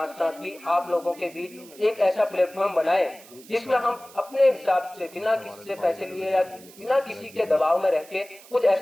साथ भी आप लोगों के बीच एक ऐसा प्लेटफॉर्म बनाए जिसमें हम अपने हिसाब से बिना किसी से पैसे लिए या बिना किसी के दबाव में रह के कुछ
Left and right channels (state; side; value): noise; right; hiss, 21 dB below the sound